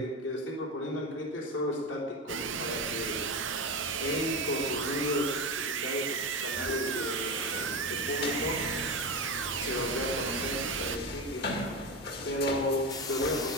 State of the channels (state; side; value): normal; both; correlation 0.19